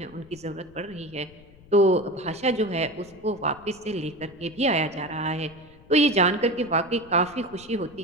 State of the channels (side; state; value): left; noise; rumble, 24 dB below the sound